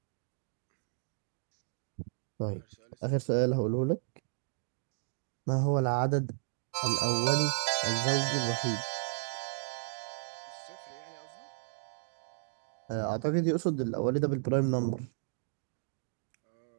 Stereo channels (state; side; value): silent; left; digital silence